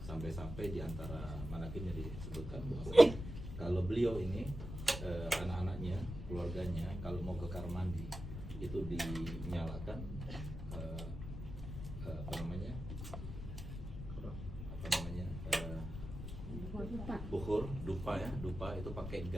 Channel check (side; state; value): left; noise; rumble, 8 dB below the sound